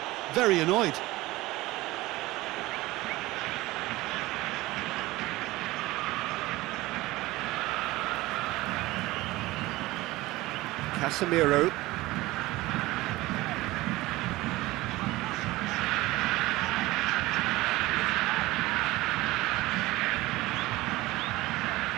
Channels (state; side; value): quieter; left; 19.0 dB